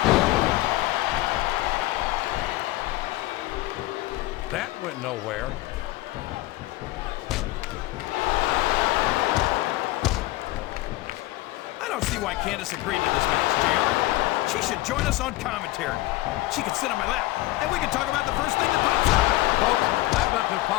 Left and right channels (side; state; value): right; quieter; 18.2 dB